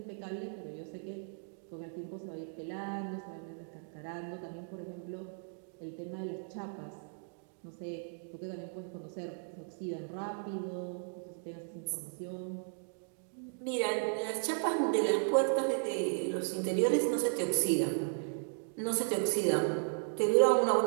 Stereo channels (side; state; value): left; silent; digital silence